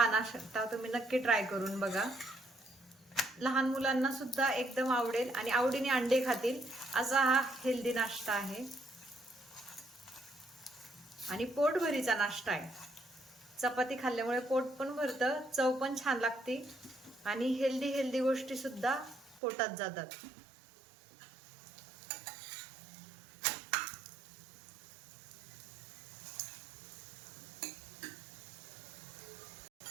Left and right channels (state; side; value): drops out; left; at 19.4 s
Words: नाश्ता तुम्ही नक्की ट्राय करून बघा. लहान मुलांना सुद्धा एकदम आवडेल आणि आवडीने अंडे खातील असा हा हेल्दी नाश्ता आहे आणि पोटभरीचा नाश्ता आहे. चपाती खाल्ल्यामुळे पोट पण भरतं, चव पण छान लागते आणि हेल्दी गोष्टी सुद्धा पोटात जातात.